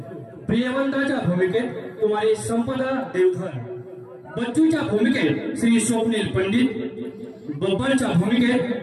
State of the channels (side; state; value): both; identical; correlation 1.00